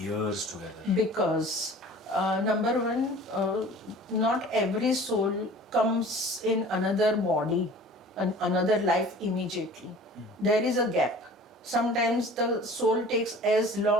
together? Because number one, not every soul comes in another body, another life immediately. There is a gap. Sometimes the soul takes as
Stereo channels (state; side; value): normal; both; correlation 0.45